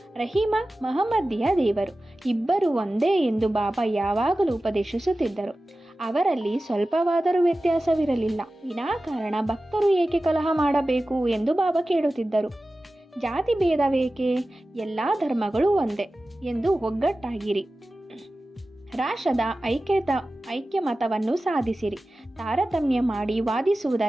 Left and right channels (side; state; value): both; normal; correlation 0.95